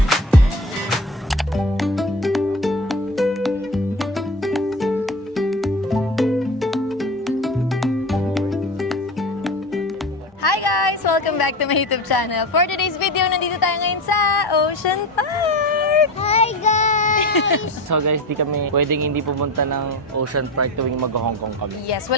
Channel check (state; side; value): normal; both; correlation 0.27